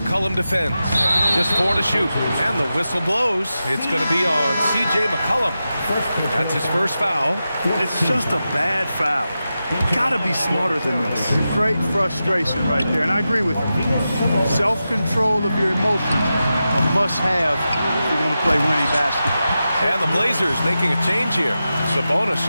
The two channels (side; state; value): both; inverted; correlation -0.91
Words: defends. Just 4 to shoot. And the whistle blows. It's going to be on C.J. McCollum. That's his first foul. It's just a bad foul. Gotta be smarter than this. Straight frustration right there, and I agree with you. Self-control of your emotions a must-have if you're going to play winning basketball. And the Blazers making a change here. Sabonis